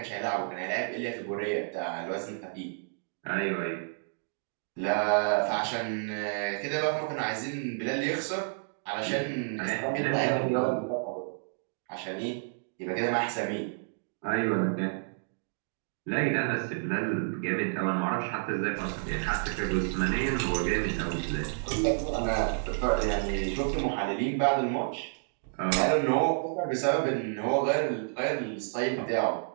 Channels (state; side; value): silent; left; digital silence